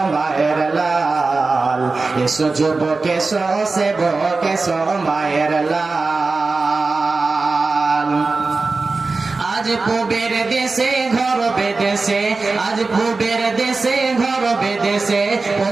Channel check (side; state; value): left; quieter; 3.8 dB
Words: মায়ের লাল, এসো যুবক এসো সেবক এসো মায়ের লাল। আজ পূবের দেশে ঘর বেদেশে, আজ পূবের দেশে ঘর বেদেশে